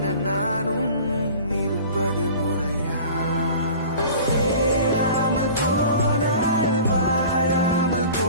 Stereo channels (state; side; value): inverted; both; correlation -0.42